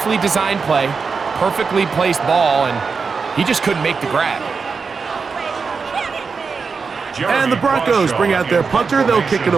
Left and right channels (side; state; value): left; quieter; 5.1 dB